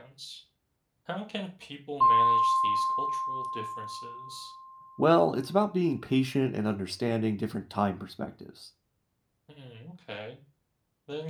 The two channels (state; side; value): identical; both; correlation 1.00